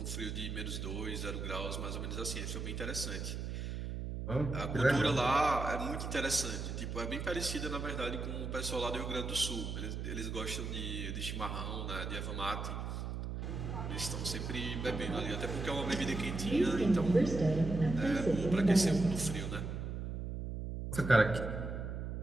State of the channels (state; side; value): noise; right; hum, 4 dB below the sound